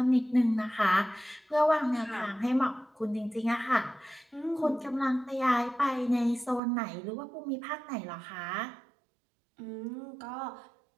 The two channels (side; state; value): left; drops out; at 6.6 s